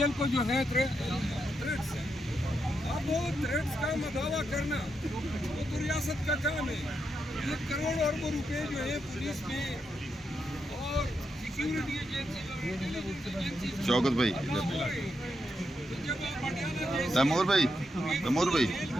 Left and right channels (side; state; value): both; normal; correlation 0.83